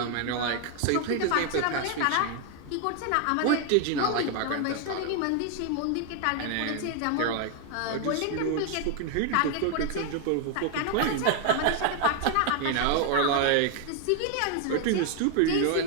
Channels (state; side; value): different; both; correlation 0.00